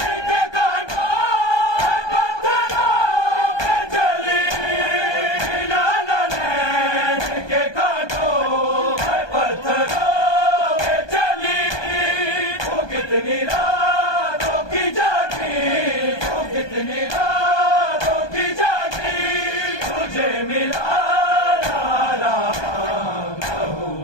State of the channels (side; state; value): right; late; 1.2 ms